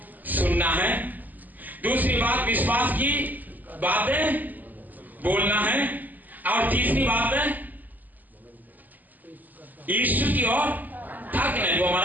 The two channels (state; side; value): late; left; 0.084 ms